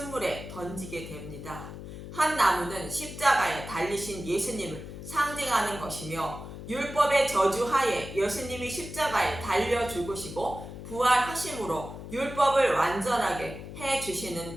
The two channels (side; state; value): left; noise; hum, 11 dB below the sound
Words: 던지게 됩니다. 한 나무는 십자가에 달리신 예수님을 상징하는 것이며 율법의 저주하에 예수님이 십자가에 달려 죽으시고 부활하심으로 율법을 완전하게 해주시는